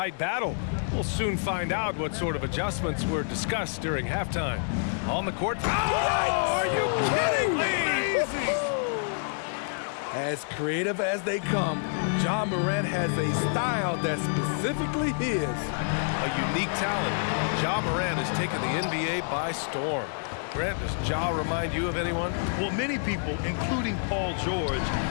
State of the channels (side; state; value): right; silent; 59 dB below the other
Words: battle. We'll soon find out what sort of adjustments were discussed during halftime. On the court. Oh, are you kidding me? As creative as they come, Ja Morant has a style that's specifically his. A unique talent. Ja Morant has taken the NBA by storm. Grant, does Ja remind you of anyone? Well, many people, including Paul George,